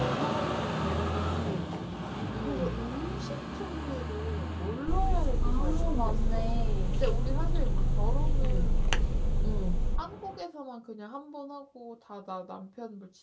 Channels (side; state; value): both; identical; correlation 1.00